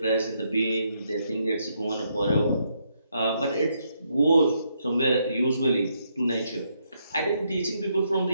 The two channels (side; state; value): both; inverted; correlation -0.76